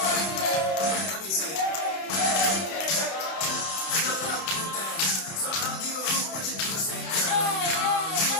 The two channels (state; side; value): late; right; 31 ms